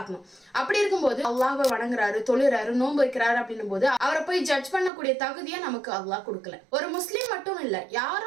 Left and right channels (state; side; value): drops out; left; at 4.9 s